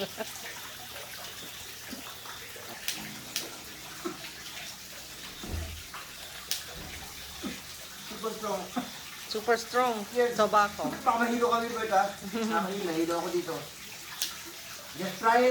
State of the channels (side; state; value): both; identical; correlation 1.00